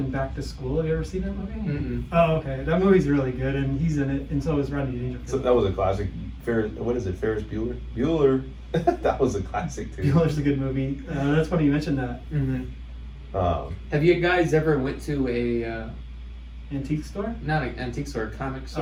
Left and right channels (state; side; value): identical; both; correlation 1.00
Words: Back to School. Have you ever seen that movie? Mm-mm. Oh, okay. That movie's really good, and he's in it, and so is Rodney Dangerfield. So that was a classic. What is it? Ferris Bueller? Bueller. That was a classic too. Bueller's a good movie. That's funny you mentioned that. Have you guys ever went to a antique store? Not an antique store, a comic